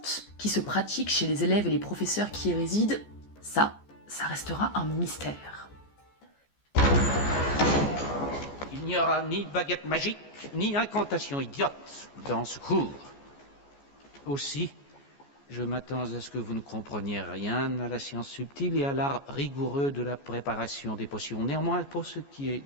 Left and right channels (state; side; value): late; right; 14 ms